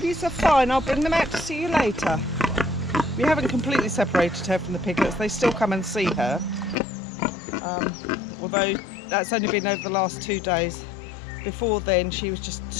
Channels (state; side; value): drops out; right; at 6.8 s